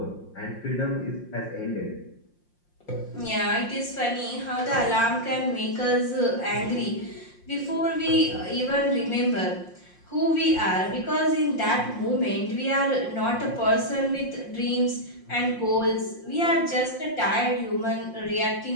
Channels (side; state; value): right; late; 5.6 ms